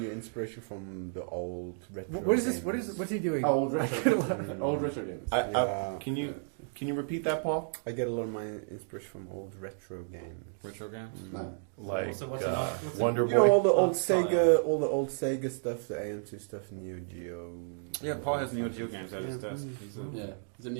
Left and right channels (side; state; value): left; silent; digital silence